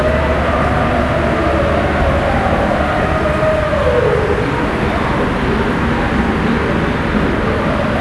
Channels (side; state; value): both; identical; correlation 1.00